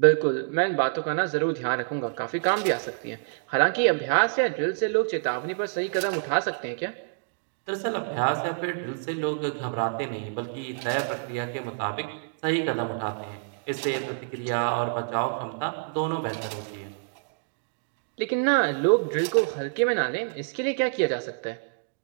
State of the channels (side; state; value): left; silent; digital silence